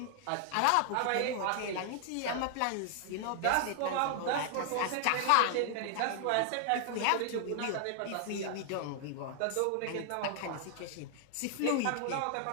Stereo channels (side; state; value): both; different; correlation 0.00